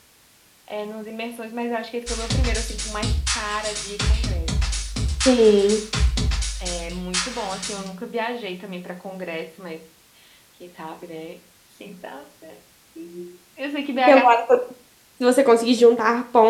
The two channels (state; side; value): identical; both; correlation 1.00